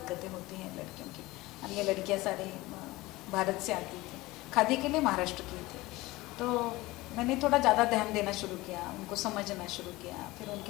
होती हैं लड़कियों की, और ये लड़कियां सारी भारत से आती थी, खादी के लिए महाराष्ट्र की थी। तो मैंने थोड़ा ज़्यादा ध्यान देना शुरू किया, उनको समझना शुरू किया, फिर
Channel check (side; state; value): right; quieter; 20.0 dB